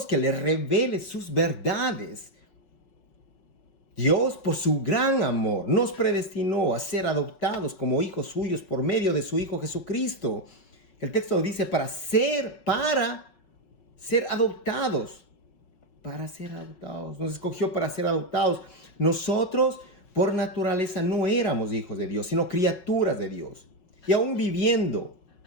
que le revele sus verdades. Dios, por su gran amor, nos predestinó a ser adoptados como hijos suyos por medio de su Hijo Jesucristo. El texto dice para ser adoptados. Para ser adoptados. Nos escogió para ser adoptados. Nosotros, por naturaleza, no éramos hijos de Dios, sino criaturas de Dios. Y aún viviendo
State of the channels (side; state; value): right; late; 5.4 ms